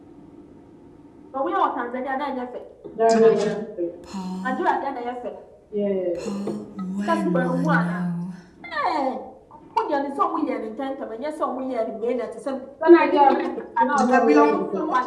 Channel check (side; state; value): both; identical; correlation 1.00